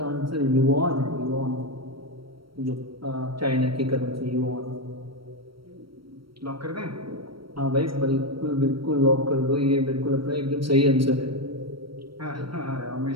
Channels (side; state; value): left; late; 0.74 ms